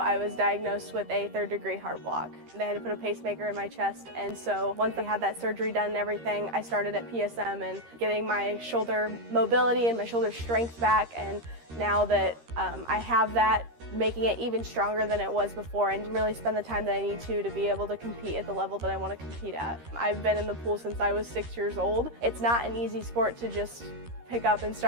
was diagnosed with a third-degree heart block. They had to put a pacemaker in my chest, and so once I had that surgery done and everything, I started at PSM and getting my shoulder mobility and my shoulder strength back, and now that I have that, making it even stronger than it was before and really spend the time that I need to be able to compete at the level that I want to compete at. I've been in the pool since I was 6 years old. It's not an easy sport to just pick up and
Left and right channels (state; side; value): late; left; 13 ms